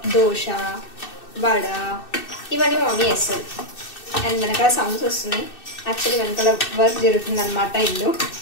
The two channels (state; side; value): late; right; 2.6 ms